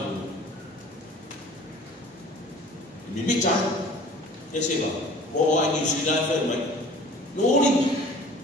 mi mita e se va o ai New Zealand fa mai no uri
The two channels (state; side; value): normal; both; correlation 0.47